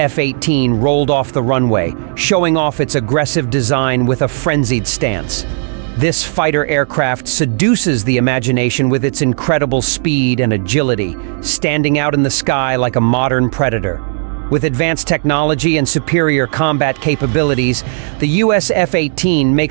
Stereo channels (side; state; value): left; silent; 62 dB below the other